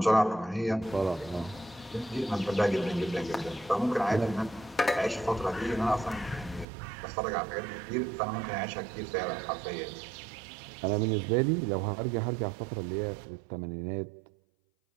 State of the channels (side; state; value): left; drops out; at 6.7 s